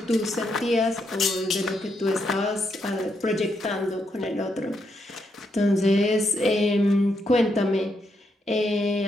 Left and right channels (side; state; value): both; normal; correlation 0.79